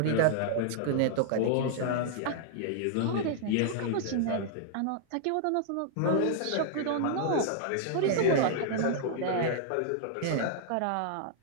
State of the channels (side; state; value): both; different; correlation -0.01